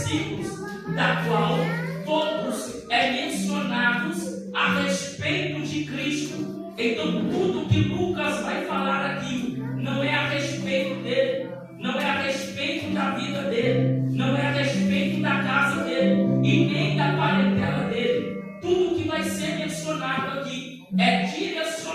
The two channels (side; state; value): both; identical; correlation 1.00